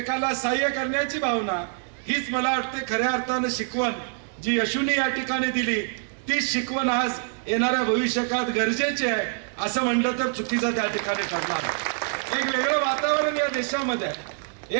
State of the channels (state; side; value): silent; left; 56 dB below the other